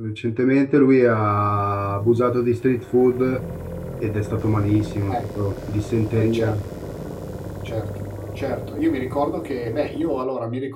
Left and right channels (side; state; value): both; identical; correlation 1.00